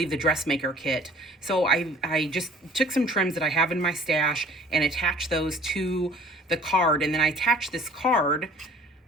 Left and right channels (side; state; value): both; normal; correlation 0.51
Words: the Dressmaker kit. So I just took some trims that I have in my stash and attached those to the card. And then I attached this card